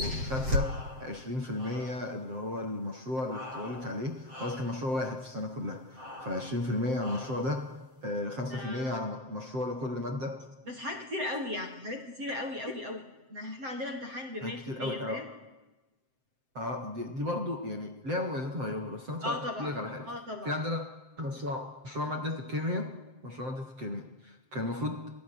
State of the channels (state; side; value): late; left; 7.7 ms